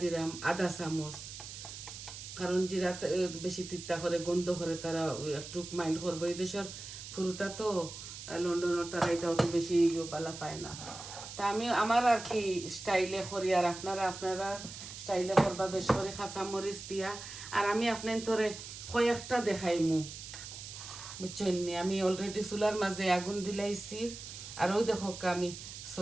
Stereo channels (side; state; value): right; noise; hiss, 11 dB below the sound